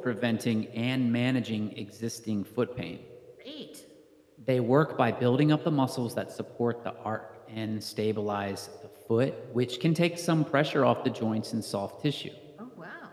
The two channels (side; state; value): both; identical; correlation 1.00